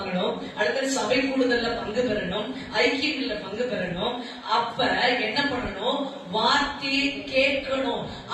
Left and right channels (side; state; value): both; identical; correlation 1.00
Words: அடுத்த சபை கூடுதல்ல பங்கு பெறணும், ஐக்கியங்கள்ல பங்கு பெறணும். அப்ப என்ன பண்ணணும்? வார்த்தையை கேட்கணும்.